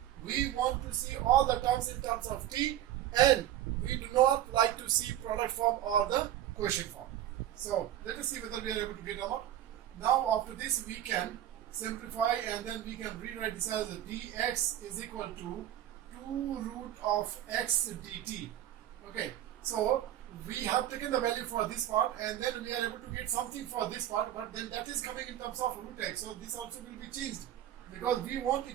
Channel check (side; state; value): left; quieter; 12.2 dB